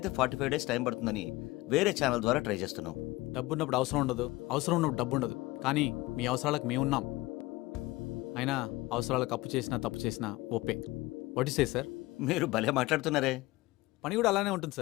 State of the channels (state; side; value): quieter; right; 20.0 dB